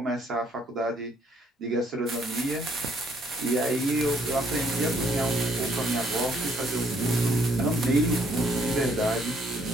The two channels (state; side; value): normal; both; correlation 0.67